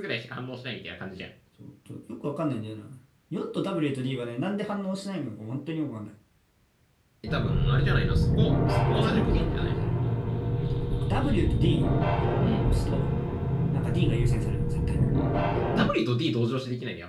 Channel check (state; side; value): identical; both; correlation 1.00